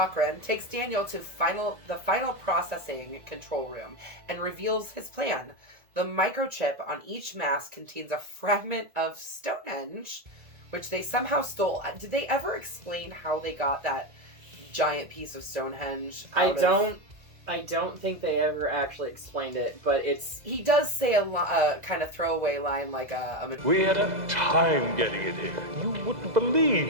takes Daniel to the final processing control room and reveals his plan. The microchip on each mask contains a fragment of Stonehenge, which they somehow stole. Did they ever explain how they got that giant piece of Stonehenge? I don't think they ever actually explained it, but he does say a kind of throwaway line like we had a time getting it here. You wouldn't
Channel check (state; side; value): late; left; 2.0 ms